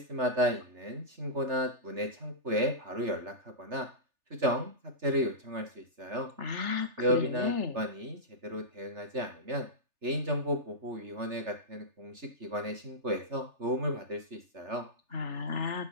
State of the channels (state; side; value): late; left; 3.3 ms